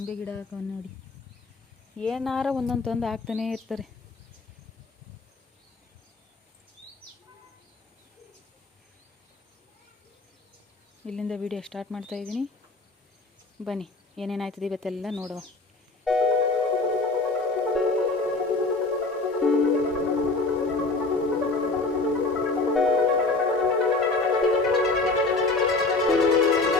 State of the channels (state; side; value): quieter; right; 3.4 dB